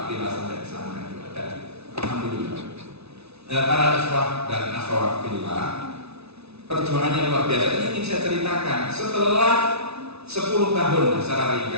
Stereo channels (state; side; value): late; left; 0.80 ms